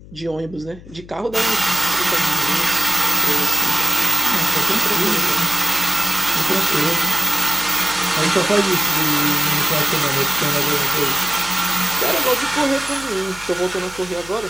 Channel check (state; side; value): noise; left; hum, 19 dB below the sound